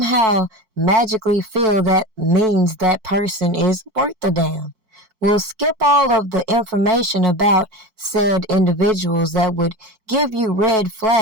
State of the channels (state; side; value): late; left; 4.5 ms